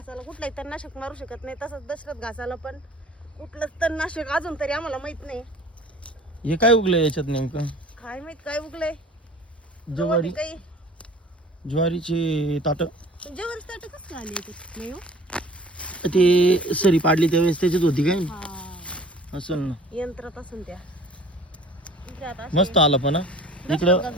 कुठलाही तणनाशक मारू शकत नाही, तसंच दशरथ घासाला पण कुठलंच तणनाशक अजून तरी आम्हाला माहित नाही. हे काय उगलंय याच्यात नेमकं? काय माहित काय उगलंय. ज्वारी, काही ज्वारीची ताट. जेवण ताट कसं आले याच्यात? नाही हो, ते सरी पाडली त्यावेळेस त्याच्यात होती काय असेल ना, यंत्रात असून त्या. इकडे आता मस्त आला पण इकडं घास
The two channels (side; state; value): both; normal; correlation 0.48